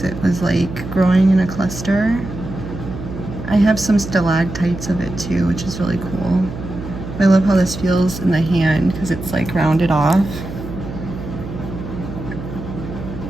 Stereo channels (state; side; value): noise; right; hum, 9 dB below the sound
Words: it was like growing in a cluster. I have some stalactites of it too, which is really cool. I love how this feels in the hand because it's like rounded off.